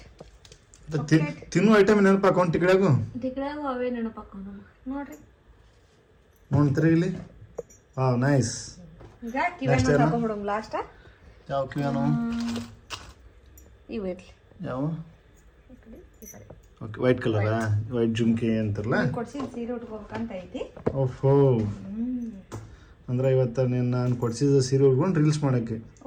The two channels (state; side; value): identical; both; correlation 1.00